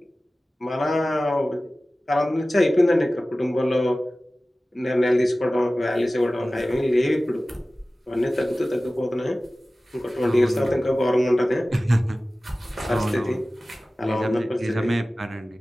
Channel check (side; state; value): both; normal; correlation 0.97